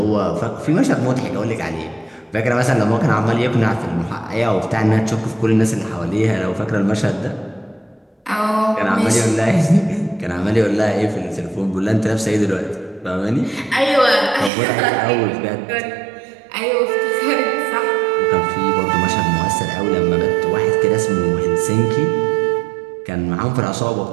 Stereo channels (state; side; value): drops out; left; at 14.5 s